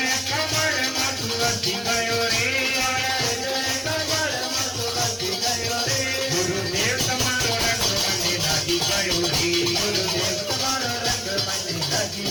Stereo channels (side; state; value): both; identical; correlation 1.00